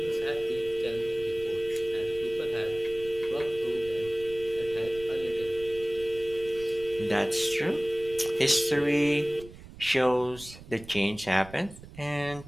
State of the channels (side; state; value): right; noise; rumble, 17 dB below the sound